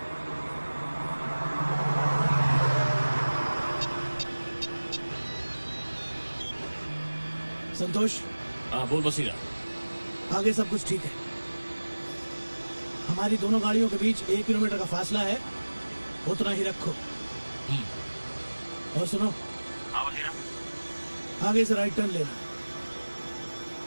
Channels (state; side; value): inverted; both; correlation -1.00